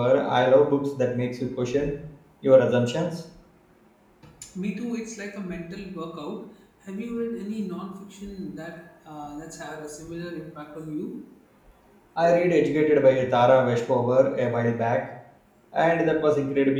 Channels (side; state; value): both; identical; correlation 1.00